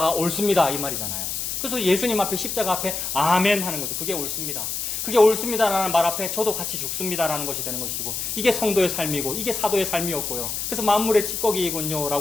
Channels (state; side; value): noise; left; hiss, 3 dB below the sound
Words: 옳습니다 이 말이잖아요. 그래서 예수님 앞에, 십자가 앞에 아멘 하는 거죠. 그게 옳습니다, 그게 옳습니다라는 말 앞에 저도 같이 죽습니다라는 것이 되는 것이고, 이게 성도의 삶이고 이게 사도의 삶이었고요. 그래서 만물의 찌꺼기이군요